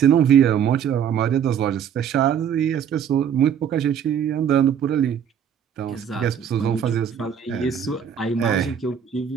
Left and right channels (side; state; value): left; quieter; 8.5 dB